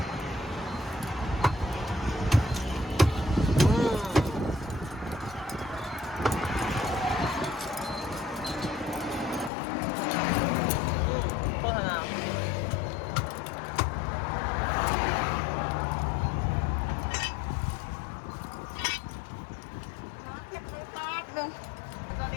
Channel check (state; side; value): drops out; right; at 9.5 s